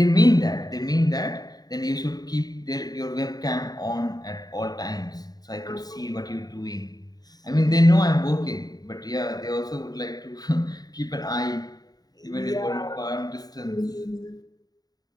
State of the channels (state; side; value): late; right; 0.19 ms